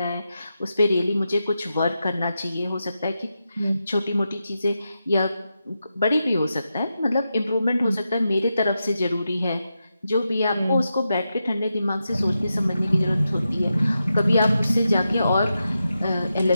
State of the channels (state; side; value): inverted; both; correlation -0.88